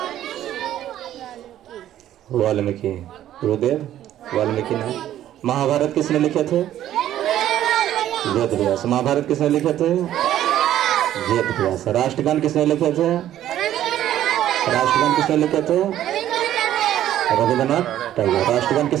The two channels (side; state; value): left; quieter; 12.2 dB